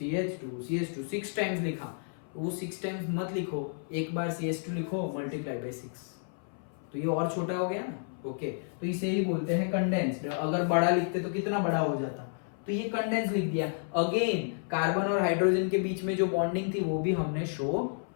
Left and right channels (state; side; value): silent; right; 57 dB below the other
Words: CH2 6 times लिखा, वो 6 टाइम्स मत लिखो, एक बार CH2 लिखो मल्टीप्लाई बाय 6, तो ये और छोटा हो गया ना। ओके, तो इसे ही बोलते हैं कंडेंस्ड। अगर बड़ा लिखते तो कितना बड़ा हो जाता, तो ये कंडेंस लिख दिया। अगेन कार्बन और हाइड्रोजन के बीच में जो बॉन्डिंग थी वो भी हमने शो